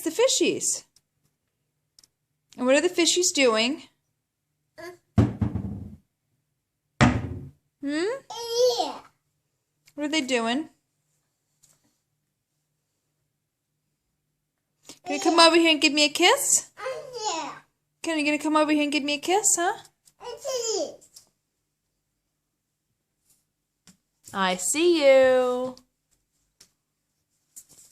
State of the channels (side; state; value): both; identical; correlation 1.00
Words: the fishies. And what are the fishies doing? Yeah. What are they doing? Can you come over here and give me a kiss? Yeah. Can you gonna come over here and give me a kiss, huh? I see you.